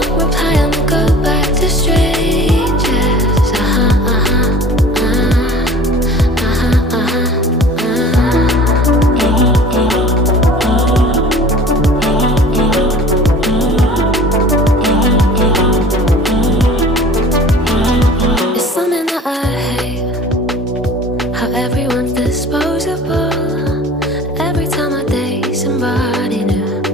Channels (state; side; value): normal; both; correlation 0.44